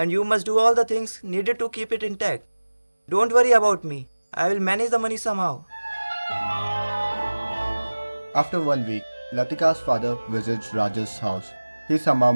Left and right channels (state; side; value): inverted; both; correlation -1.00